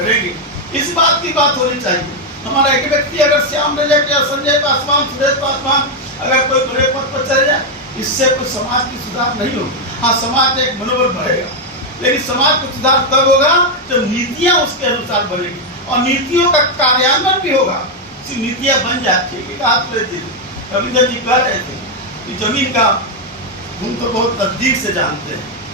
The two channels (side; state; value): both; normal; correlation 0.02